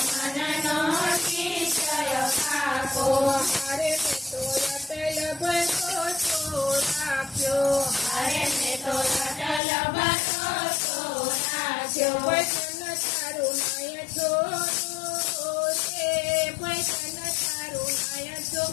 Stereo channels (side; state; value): right; drops out; at 9.6 s